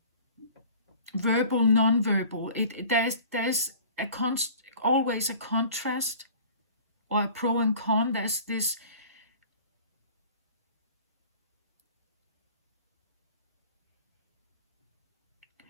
Verbal, non-verbal. There's always a contrast or a pro and con. There's this.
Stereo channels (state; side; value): inverted; both; correlation -0.46